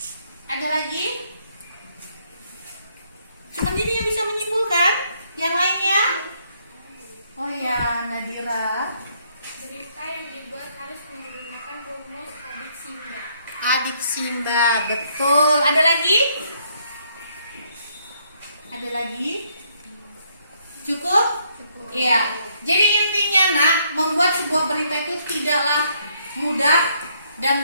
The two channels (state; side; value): inverted; both; correlation -0.70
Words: Ada lagi? Cuma ini yang bisa menyimpulkan. Yang lainnya? Oh ya, Nadira. Berita yang dibuat harus menggunakan rumus adik Simba. Adik Simba, betul. Ada lagi? Ada lagi? Cukup? Iya. Jadi intinya nak, membuat sebuah berita itu tidaklah mudah